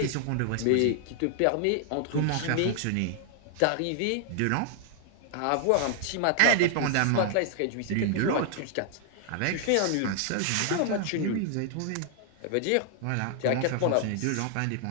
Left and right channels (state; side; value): different; both; correlation 0.00